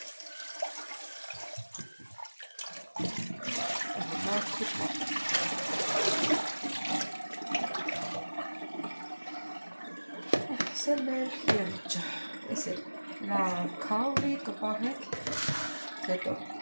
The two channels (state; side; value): inverted; both; correlation -1.00